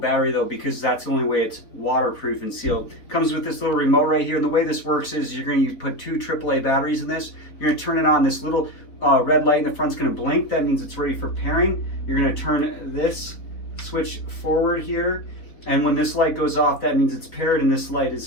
though, because that's the only way it's waterproof and sealed. Comes with this little remote right here, and the way this works is you're going to put 2 AAA batteries in this. You're going to turn it on. This little red light in the front's going to blink. That means it's ready for pairing. You're going to turn this switch forward here, and when this light goes off, that means it's paired and this light is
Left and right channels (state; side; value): late; right; 3.9 ms